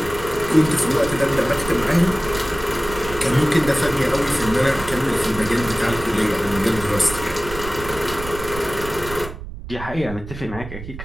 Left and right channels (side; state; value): right; noise; rumble, 12 dB below the sound